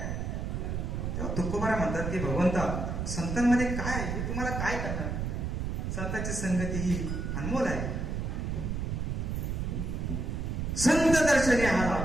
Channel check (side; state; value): right; noise; rumble, 2 dB below the sound